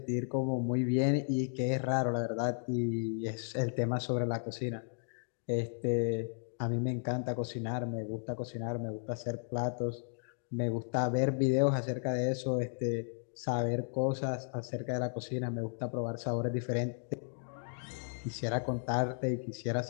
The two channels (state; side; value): silent; right; digital silence